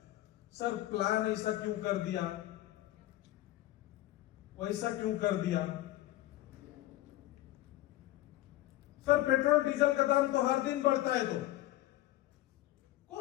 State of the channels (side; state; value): right; quieter; 16.0 dB